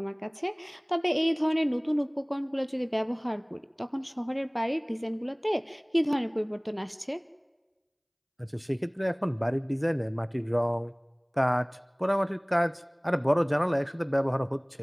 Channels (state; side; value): identical; both; correlation 1.00